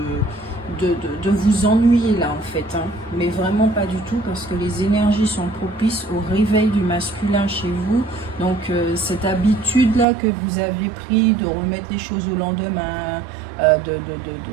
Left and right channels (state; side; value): drops out; left; at 10.1 s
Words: vous ennuyer là, en fait. Hein. Mais vraiment pas du tout, parce que les énergies sont propices au réveil du masculin chez vous. Donc, cette habitude-là que vous avez pris de remettre les choses au lendemain,